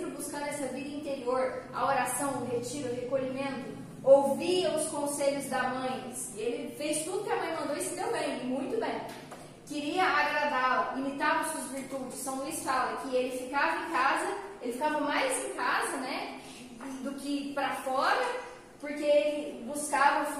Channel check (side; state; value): both; identical; correlation 1.00